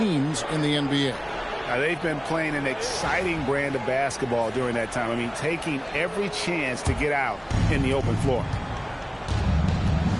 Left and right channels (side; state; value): both; identical; correlation 1.00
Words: in the NBA. Now, they've been playing an exciting brand of basketball during that time. I mean, taking every chance to get out in the open floor.